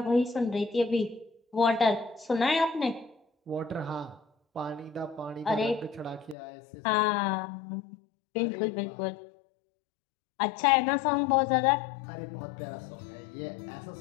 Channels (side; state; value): right; drops out; at 6.4 s